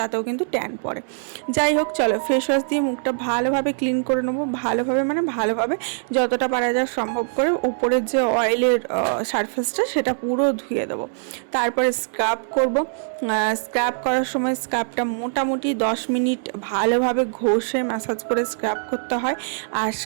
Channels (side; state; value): left; silent; digital silence